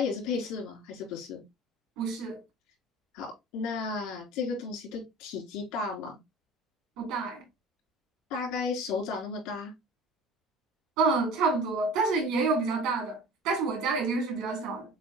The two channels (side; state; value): both; normal; correlation 0.38